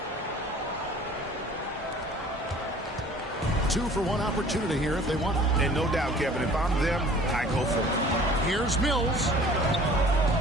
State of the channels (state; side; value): normal; both; correlation 0.49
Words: 2 for 1 opportunity here if they want it. And no doubt, Kevin, if I'm them, I go for it. Here's Mills.